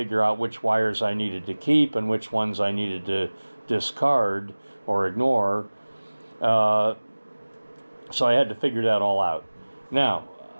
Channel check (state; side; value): inverted; both; correlation -1.00